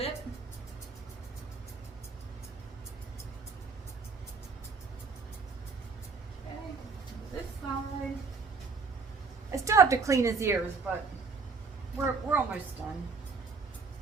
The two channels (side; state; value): left; quieter; 4.6 dB